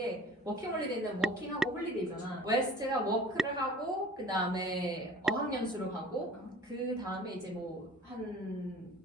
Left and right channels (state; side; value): normal; both; correlation 0.45